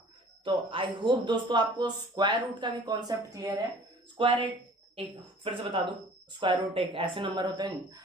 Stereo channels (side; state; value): both; normal; correlation 0.49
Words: तो आई होप दोस्तों आपको स्क्वायर रूट का भी कॉन्सेप्ट क्लियर है। स्क्वायर एक फिर से बता दूं, स्क्वायर रूट एक ऐसे नंबर होते हैं,